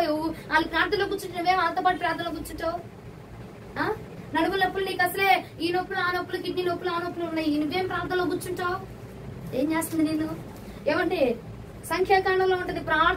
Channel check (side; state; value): both; identical; correlation 1.00